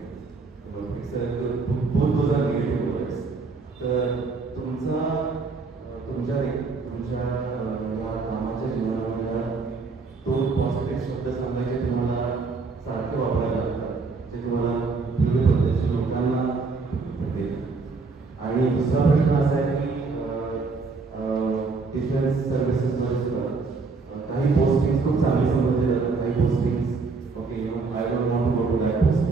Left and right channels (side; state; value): left; quieter; 4.3 dB